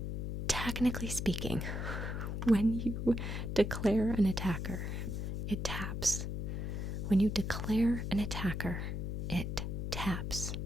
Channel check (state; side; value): noise; left; hum, 3 dB below the sound